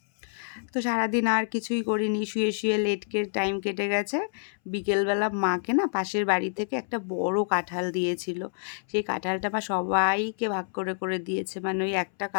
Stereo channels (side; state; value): right; silent; 60 dB below the other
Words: তো সারাদিন আর কিছুই করিনি, শুয়ে শুয়ে লেটকে টাইম কেটে গেছে। বিকেলবেলা মাকে না পাশের বাড়ি থেকে একটা বড় কাঁঠাল দিয়েছিল। সেই কাঁঠালটা মা সবাইকে ভাগ করে করে দিয়েছে, মানে ওই একটা